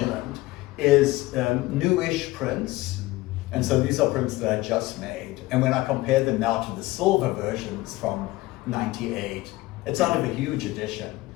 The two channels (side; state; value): right; quieter; 19.2 dB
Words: is newish prints. And so these are prints that I just made. And when I compare them now to the silver versions from 98, it's out of a huge edition.